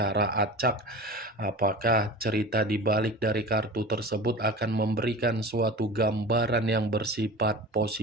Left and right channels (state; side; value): normal; both; correlation 0.34